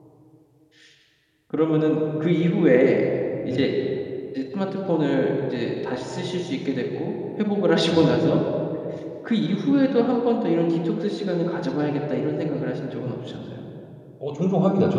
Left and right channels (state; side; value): identical; both; correlation 1.00